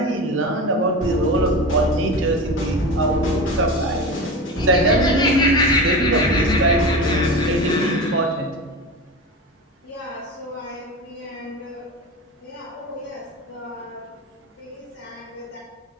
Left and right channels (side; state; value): both; normal; correlation 0.27